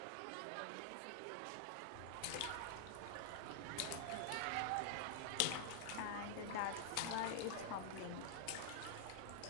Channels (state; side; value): different; both; correlation -0.01